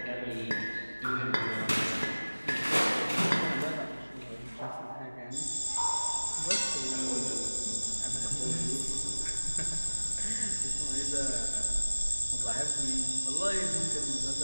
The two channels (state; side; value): inverted; both; correlation -1.00